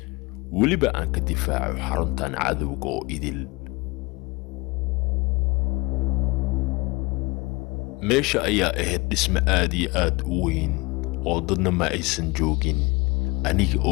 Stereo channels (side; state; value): right; quieter; 24.9 dB